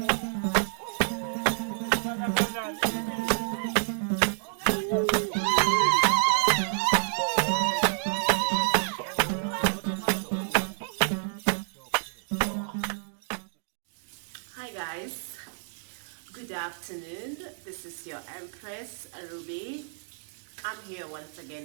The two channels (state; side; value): silent; left; digital silence